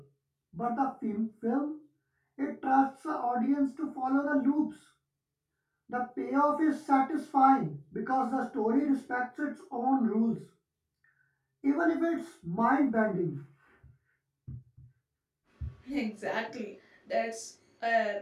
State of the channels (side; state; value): both; identical; correlation 1.00